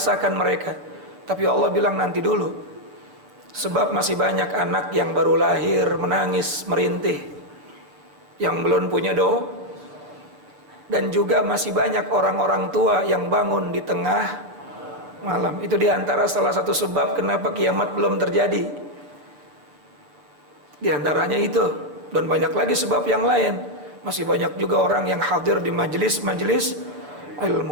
mereka. Tapi Allah bilang nanti dulu, sebab masih banyak anak yang baru lahir menangis merintih, yang belum punya doa, dan juga masih banyak orang-orang tua yang bangun di tengah malam. Itu diantara salah satu sebab kenapa kiamat belum terjadi. Di antaranya itu, dan banyak lagi sebab yang lain. Masih banyak juga orang yang hadir di majelis-majelis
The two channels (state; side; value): late; left; 7.0 ms